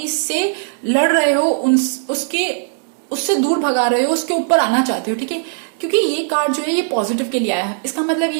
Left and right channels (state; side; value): silent; left; digital silence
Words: से लड़ रहे हो, उससे दूर भगा रहे हो, उसके ऊपर आना चाहते हो, ठीक है। क्योंकि ये कार्ड जो है ये पॉजिटिव के लिए आया है, इसका मतलब